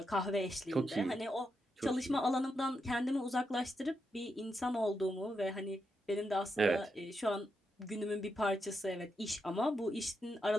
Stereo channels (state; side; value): normal; both; correlation 0.84